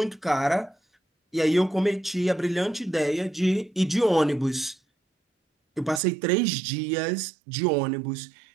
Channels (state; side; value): drops out; left; at 6.0 s